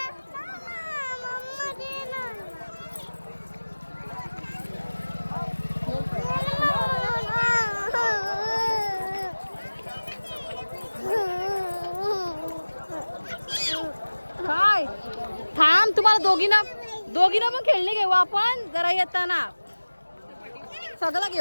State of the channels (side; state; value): both; inverted; correlation -1.00